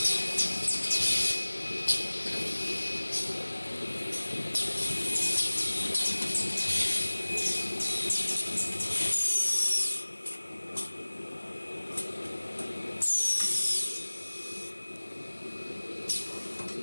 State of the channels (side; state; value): both; inverted; correlation -1.00